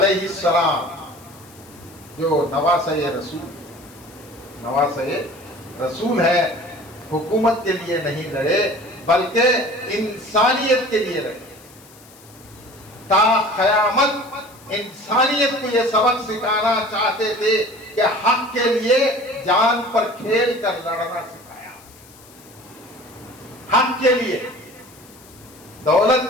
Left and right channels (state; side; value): noise; left; hiss, 24 dB below the sound